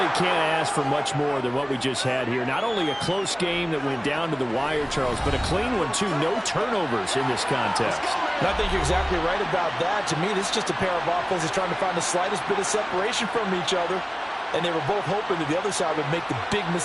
can't ask for much more than what we just had here. Not only a close game that went down to the wire, Charles, but a clean one, too. No turnovers in this contest. And I think you're exactly right about that. To me, this is just a pair of offenses trying to find the slightest bit of separation from each other. And they were both hoping that the other side would make the big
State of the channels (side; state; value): both; identical; correlation 1.00